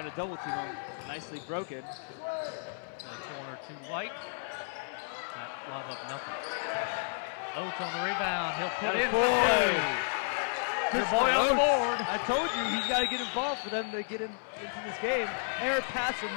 to double team him. Nicely broken. In the corner to White. Not lob up nothing. Oates on the rebound. He'll put in for two. Your boy on the board. I told you he's got to get involved for them to get into this game. Error pass from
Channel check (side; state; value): right; silent; 56 dB below the other